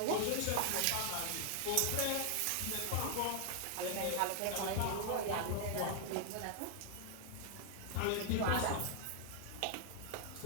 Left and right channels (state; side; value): different; both; correlation 0.00